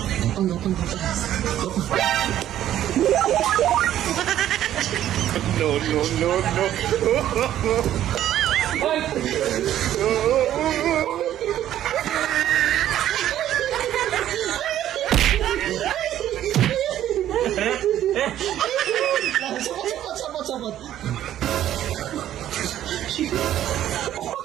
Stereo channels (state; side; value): quieter; left; 11.9 dB